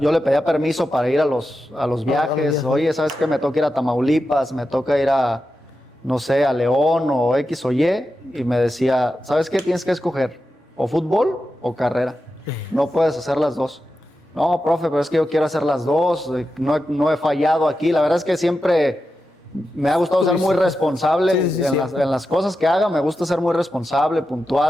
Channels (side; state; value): both; normal; correlation 0.90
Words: le pedía permiso para ir a los viajes. Oye, ¿sabes qué? Me toca ir a Tamaulipas, me toca ir a, no sé, a León o X o Y. Y me decía, ¿sabes qué? Tienes que escoger, o fútbol o carrera. No puedes hacer las dos. No, profe, pero es que yo quiero hacer las dos. No he fallado aquí. La verdad es que siempre me ha gustado ser muy responsable en las cosas que haga. Me gusta ser muy responsable,